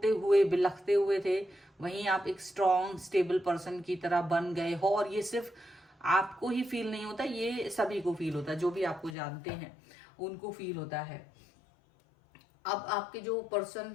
हुए बिलखते हुए थे, वहीं आप एक स्ट्रॉन्ग स्टेबल पर्सन की तरह बन गए हो। और ये सिर्फ आपको ही फील नहीं होता, ये सभी को फील होता है, जो भी आपको जानते हैं उनको फील होता है। अब आपके जो पर्सन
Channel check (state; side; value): drops out; right; at 9.2 s